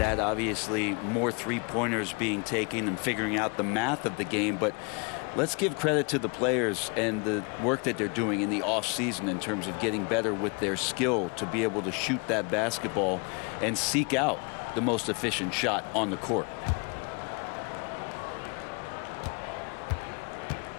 Obviously, more three-pointers being taken and figuring out the math of the game. But let's give credit to the players and the work that they're doing in the off-season in terms of getting better with their skill to be able to shoot that basketball and seek out the most efficient shot on the court.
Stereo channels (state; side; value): quieter; right; 32.6 dB